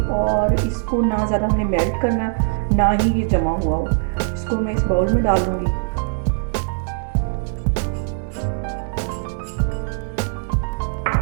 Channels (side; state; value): left; silent; digital silence